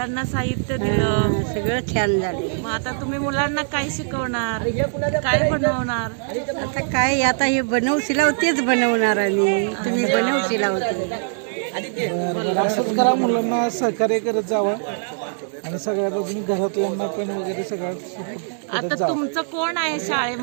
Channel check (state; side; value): silent; left; digital silence